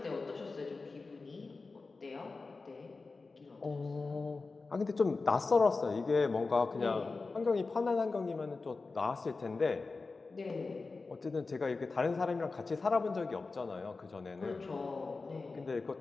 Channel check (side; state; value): right; quieter; 3.9 dB